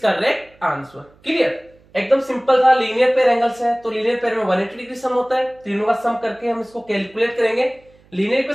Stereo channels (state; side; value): noise; right; hum, 30 dB below the sound